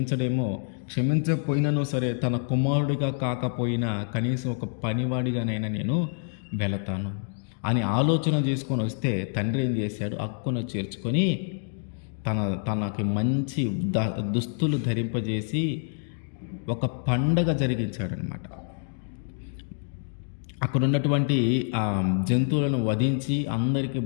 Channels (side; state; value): right; silent; 57 dB below the other